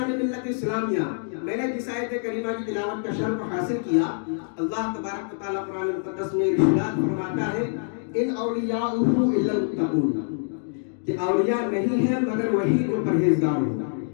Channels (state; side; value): silent; right; digital silence